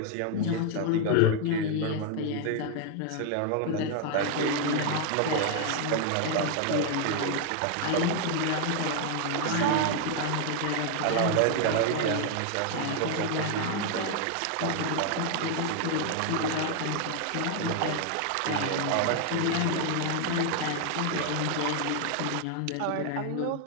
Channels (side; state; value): both; different; correlation 0.00